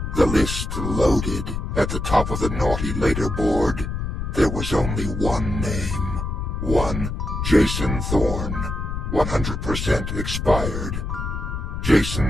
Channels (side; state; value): left; noise; rumble, 4 dB below the sound